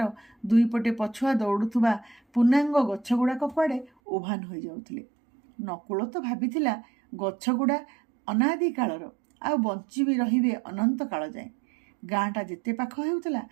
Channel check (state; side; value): drops out; left; at 3.9 s